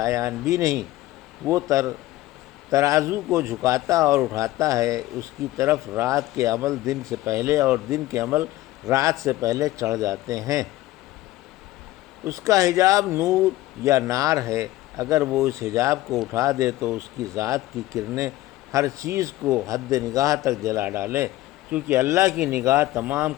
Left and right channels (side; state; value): right; quieter; 16.6 dB